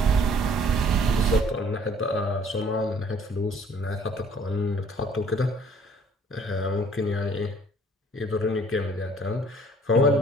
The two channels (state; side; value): normal; both; correlation 0.57